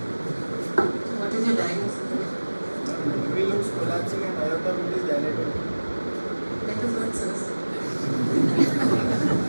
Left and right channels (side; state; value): both; inverted; correlation -1.00